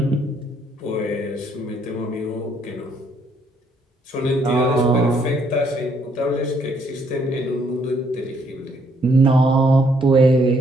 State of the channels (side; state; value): both; normal; correlation 0.69